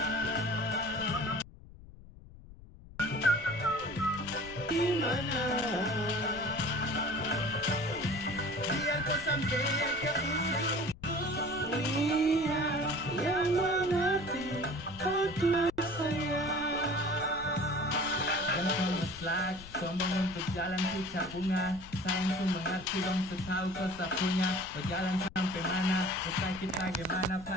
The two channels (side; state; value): left; noise; rumble, 18 dB below the sound